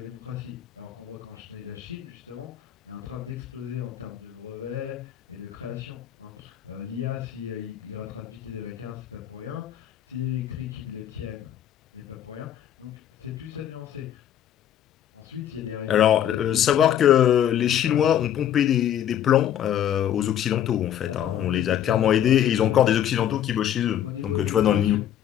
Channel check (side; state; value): right; quieter; 10.5 dB